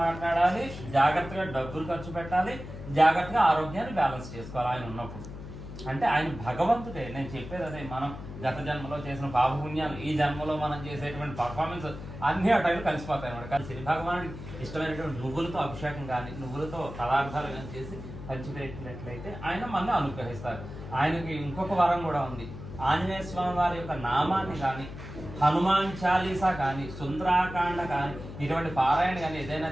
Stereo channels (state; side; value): noise; left; hum, 11 dB below the sound